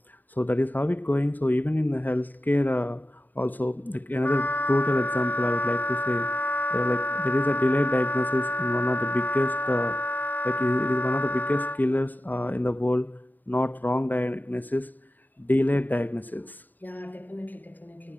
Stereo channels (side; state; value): right; late; 0.087 ms